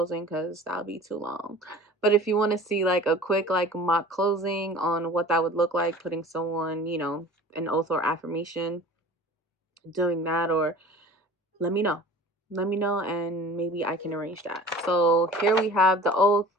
because that'll be too long. But if you want to see like a quick like mock closing on what that would look like, putting someone, an oath or affirmation, doing that, or let me know. Let me know and maybe I can arrange that. So here we have the oath.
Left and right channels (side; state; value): both; normal; correlation 0.42